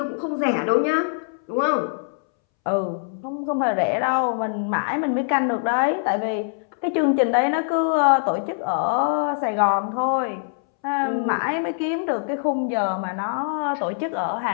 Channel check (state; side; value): silent; right; 63 dB below the other